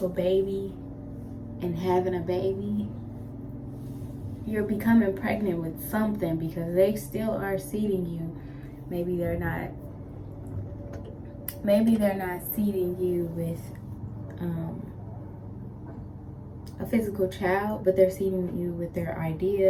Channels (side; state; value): both; identical; correlation 1.00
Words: baby and having a baby, you're becoming pregnant with something because they still are seeding you. Maybe they're not seeding you with a physical child, but they're seeding you with their